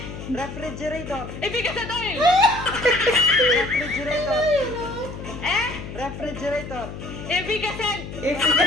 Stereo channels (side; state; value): left; noise; hum, 10 dB below the sound